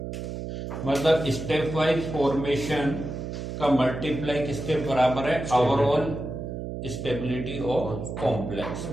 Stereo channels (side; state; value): right; noise; hum, 6 dB below the sound